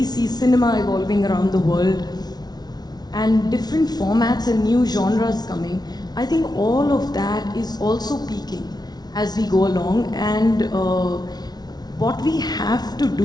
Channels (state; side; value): late; right; 0.19 ms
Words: see cinema evolving around the world, and different formats and new genres coming, I think all of that is also peaking as we go along. And what we have to